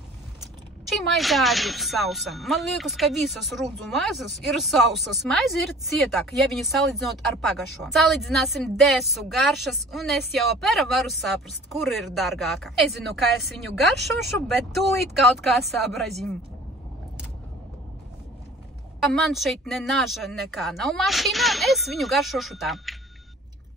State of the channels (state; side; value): normal; both; correlation 0.47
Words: Šī maize arī ir sausa. Man liekas, ka visas rudzu maizes ir sausas. Maize ir cietāka, ja viņu salīdzinot ar pagašo. Salīdzināsim desu garšas, un es jau apēra varu saprast, kur ir dārgāka. Nezinu, kā es viņu garšošu, bet tūlīt kaut kā sabrazīm. Man šeit ne naža nekā nav mašīnā, es viņu garšošu tā.